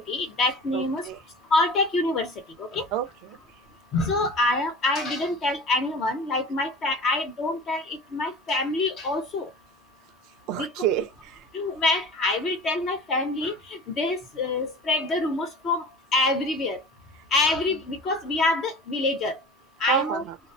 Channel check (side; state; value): both; normal; correlation 0.38